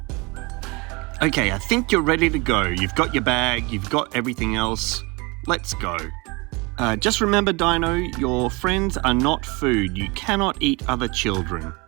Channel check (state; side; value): quieter; left; 26.9 dB